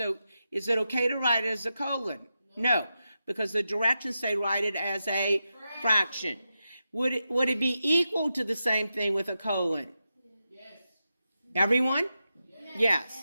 is it okay to write it as a colon? No, because the directions say write it as a fraction. Would it be equal to the same thing with a colon? Yes. Everyone?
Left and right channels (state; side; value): inverted; both; correlation -0.89